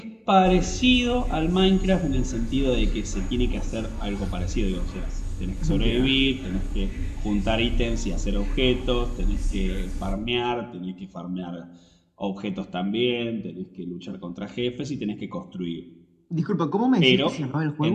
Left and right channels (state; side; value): identical; both; correlation 1.00